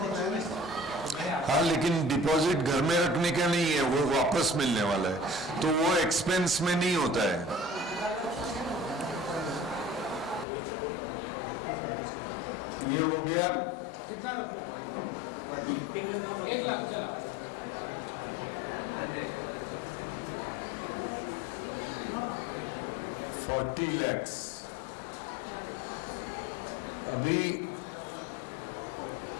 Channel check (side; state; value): right; drops out; at 10.5 s